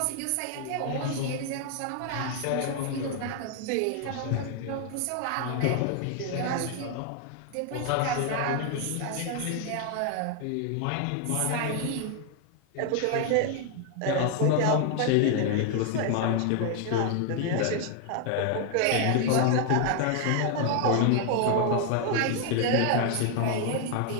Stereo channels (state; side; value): different; both; correlation 0.00